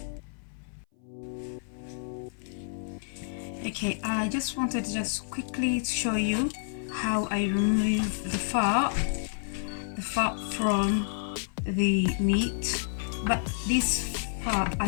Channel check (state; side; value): silent; right; 57 dB below the other